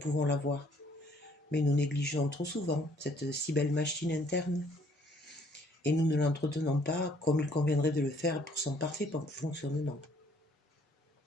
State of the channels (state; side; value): normal; both; correlation 0.62